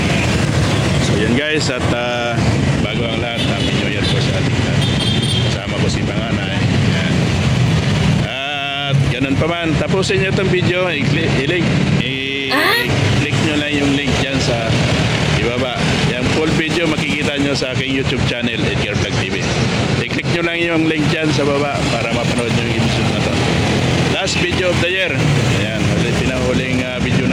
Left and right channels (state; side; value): identical; both; correlation 1.00